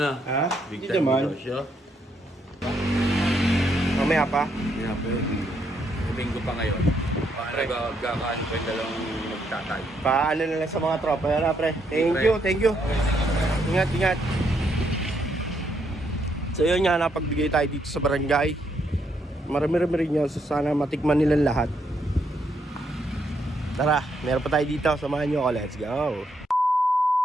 Ha? Big Hindi time naman. binegosyo. Mamaya pa. Hindi na, pre. Linggo pa ngayon. Paano gagawin ko yung dalawang magtatay? Paano na lang sa mga tropa. Yan na, pre. Thank you, thank you. Ingat, ingat. So yun nga, napagbigay tayo dito sa barangay. Marami-rami rin yun. So sana matikman nilang lahat. Tara, meron pa tayo dito. Samahan nyo ako. Let's go.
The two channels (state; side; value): normal; both; correlation 0.75